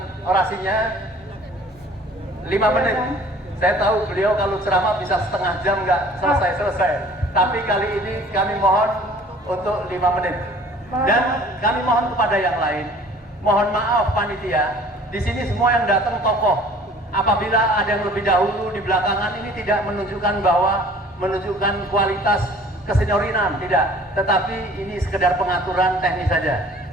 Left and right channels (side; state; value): both; normal; correlation 0.50